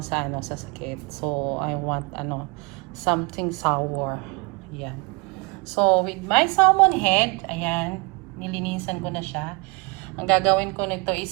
sa sakit. So I want something sour. Ayan. So with my salmon head, ayan, nilinisan ko na siya. Ang gagawin ko nito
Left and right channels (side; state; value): left; quieter; 28.0 dB